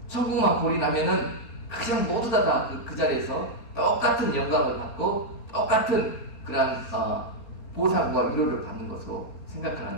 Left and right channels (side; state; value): right; late; 4.3 ms